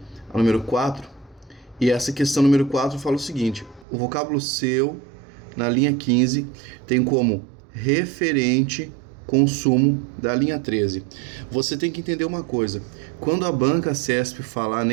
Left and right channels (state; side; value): drops out; left; at 3.9 s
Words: a número 4. E essa questão número 4 fala o seguinte: o vocábulo seu, na linha 15, tem como referente consumo da linha 13. Você tem que entender uma coisa. Quando a banca CESP falar